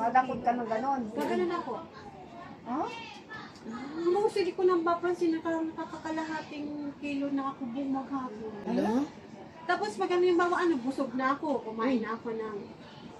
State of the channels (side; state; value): both; identical; correlation 1.00